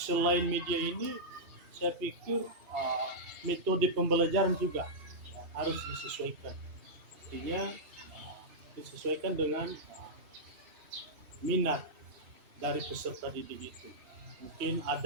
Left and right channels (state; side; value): late; left; 2.7 ms